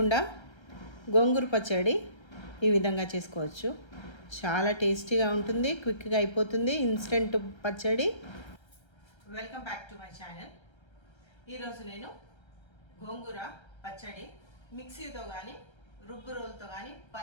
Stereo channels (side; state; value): right; late; 1.3 ms